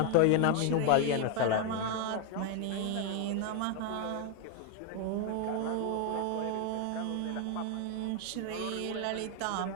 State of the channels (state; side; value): different; both; correlation 0.01